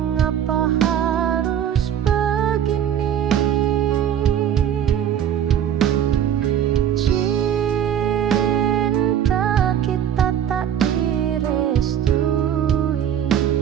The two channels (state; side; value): quieter; left; 9.5 dB